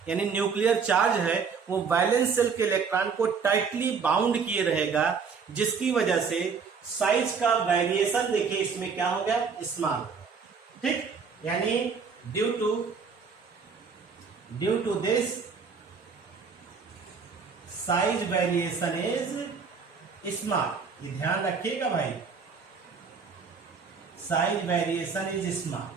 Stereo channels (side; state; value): left; quieter; 5.6 dB